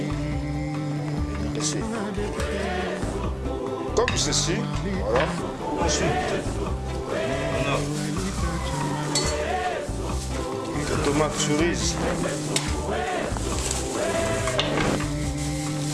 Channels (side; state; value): both; identical; correlation 1.00